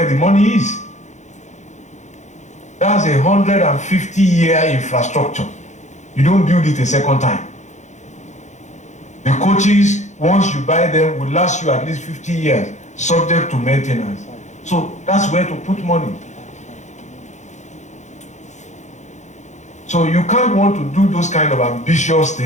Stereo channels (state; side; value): late; right; 0.34 ms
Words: the money is. That's 150-year infrastructure. You don't build it a second time. The coaches, once you buy them, will last you at least 50 years, subject to maintenance. So that's where to put money. So you can't want to do those kind of ambitious